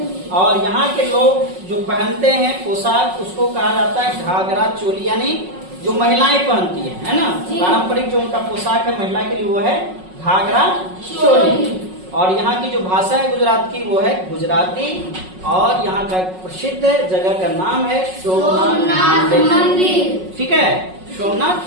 और यहाँ के लोग जो पहनते हैं पोशाक उसको कहा जाता है घाघरा चोली, यानी जो महिलाएं पहनती है ना, पारंपरिक जो उनका पोशाक है महिला के लिए वो है घाघरा चोली। और यहाँ की जो भाषा है गुजरात की वो है गुजराती। और यहाँ का प्रसिद्ध जगह का नाम है सोमनाथ मंदिर। ठीक है,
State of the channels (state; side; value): late; left; 5.4 ms